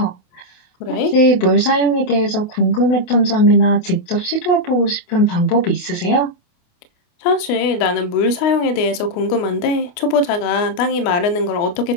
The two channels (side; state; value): right; late; 28 ms